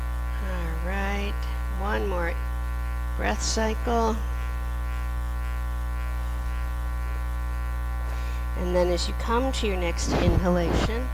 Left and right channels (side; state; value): both; identical; correlation 1.00